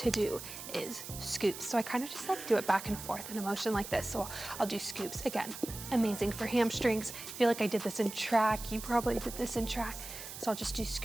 do is scoops. So I kind of just like do it back and forth in a motion like this. So I'll do scoops. Again, amazing for hamstrings. I feel like I did this in track. You probably did this in track. So I'll just do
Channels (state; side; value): noise; right; hiss, 10 dB below the sound